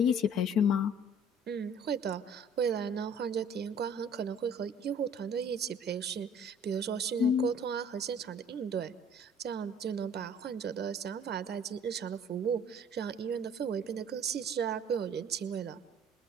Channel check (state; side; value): normal; both; correlation 0.52